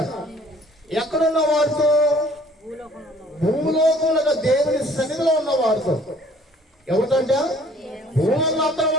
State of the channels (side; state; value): both; normal; correlation 0.55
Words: ఎక్కడున్న వారితో? భూలోకంలో దేవుని సన్నిధిలో ఉన్న వారితో. ఎవరికంటే భూలోకంలో అందరూ